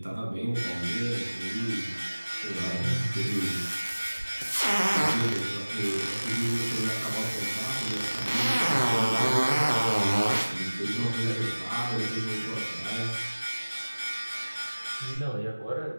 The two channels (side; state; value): both; inverted; correlation -1.00